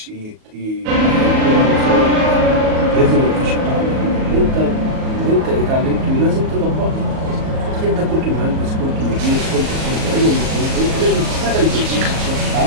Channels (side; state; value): left; late; 38 ms